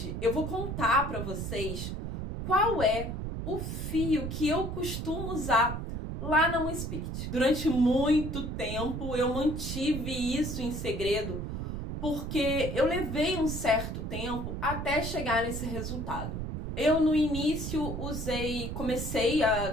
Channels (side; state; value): right; noise; rumble, 5 dB below the sound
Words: eu vou contar para vocês qual é o fio que eu costumo usar lá na Moon Spirit. Durante muito tempo, eu mantive isso em segredo, porque eu levei um certo tempo até chegar nesse resultado. Eu, no início, comecei a